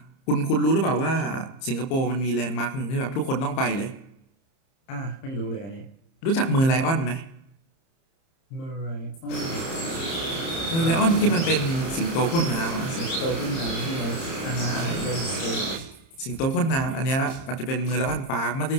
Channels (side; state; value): right; late; 30 ms